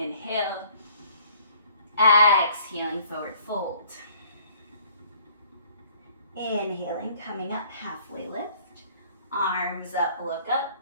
exhaling, forward fold. Inhaling, coming up, halfway lift. Arms up, look up.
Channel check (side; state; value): both; inverted; correlation -0.57